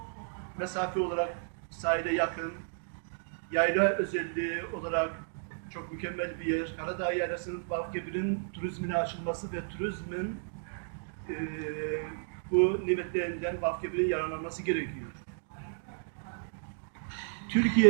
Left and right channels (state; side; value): silent; left; digital silence